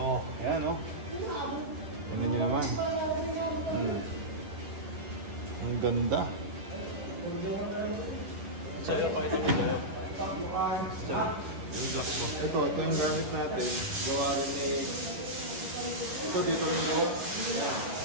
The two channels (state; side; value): late; left; 10 ms